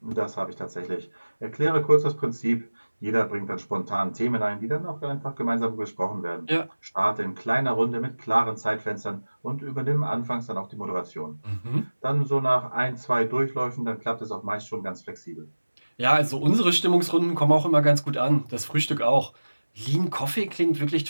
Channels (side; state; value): both; inverted; correlation -1.00